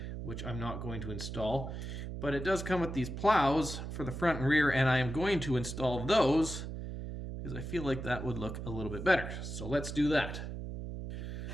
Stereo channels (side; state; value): right; noise; hum, 7 dB below the sound